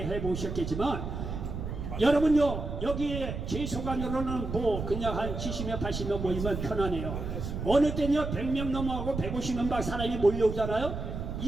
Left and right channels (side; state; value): right; noise; rumble, 5 dB below the sound